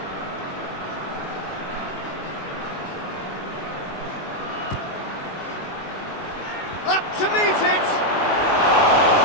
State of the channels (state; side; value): late; right; 21 ms